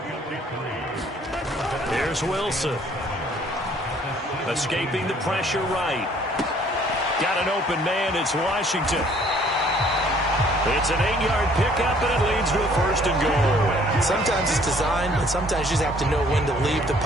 Here's Wilson. Escaping the pressure right. Got an open man. It's Washington. It's an 8-yard pickup, and it leads to a first and goal. Sometimes it's designed, and sometimes you just have to know when to leave the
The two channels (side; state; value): both; normal; correlation 0.59